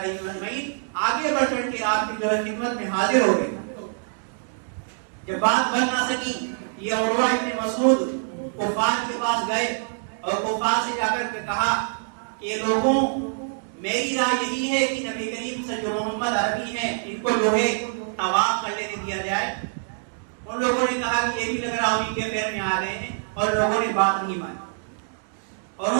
اجمعین آگے بڑھ کر کے آپ کی جو ہے خدمت میں حاضر ہو گئے. جب بات بن نہ سکی یہ عروہ ابن مسعود کفار کے پاس گئے اور کفار سے جا کر کے کہا کہ لوگوں میری رائے یہی ہے کہ نبی کریم سے جو محمد عربی ہیں ان کو جو ہے طواف کر لینے دیا جائے. ان لوگوں نے کہا کہ یہ بھی لگ رہا انہیں کے پیر میں آ رہے ہیں اور لوگوں نے بات نہیں مانی. اور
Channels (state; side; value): silent; left; digital silence